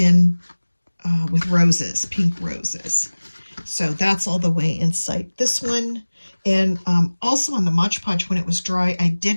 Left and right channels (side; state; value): both; inverted; correlation -1.00